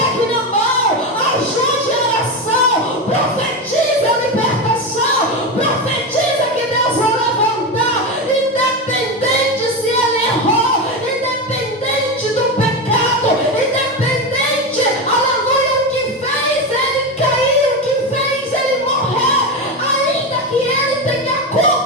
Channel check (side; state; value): both; normal; correlation 0.16